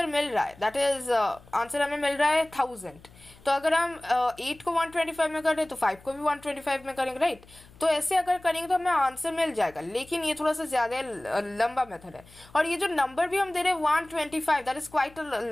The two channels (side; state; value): left; noise; hum, 24 dB below the sound